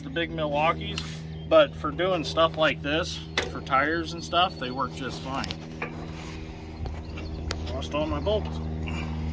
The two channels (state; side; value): identical; both; correlation 1.00